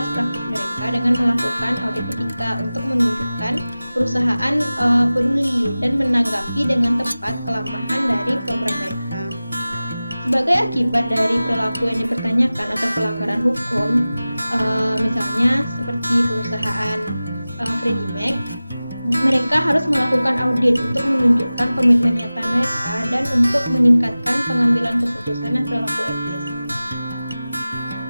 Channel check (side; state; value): both; inverted; correlation -0.97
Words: praktik mereka dengan melakukan audit etika untuk menunjukkan perusahaan peduli dan menanggapi dengan tepat kelemahan dari program mereka. Sebagai akibat dari perilaku yang dipertanyakan atau pelanggaran hukum, misalnya seperti perusahaan Freddie Mac, mereka harus melakukan audit untuk menunjukkan komitmen nyata mereka dan untuk meningkatkan pengambilan keputusan dan perilaku etis.